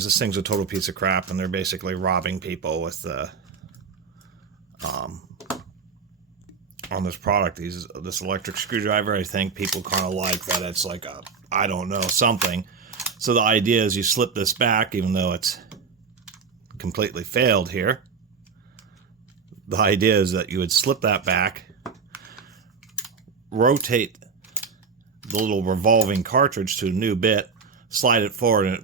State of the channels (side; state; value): left; quieter; 5.5 dB